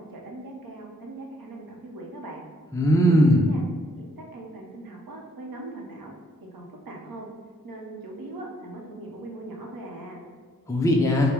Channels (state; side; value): normal; both; correlation 0.69